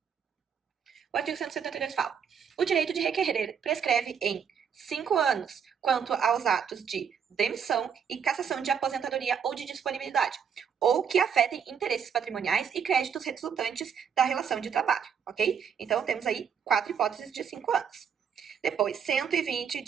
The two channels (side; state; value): left; quieter; 7.4 dB